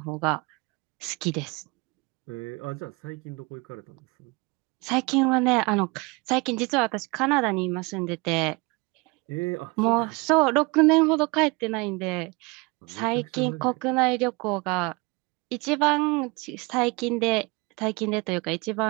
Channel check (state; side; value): quieter; left; 27.2 dB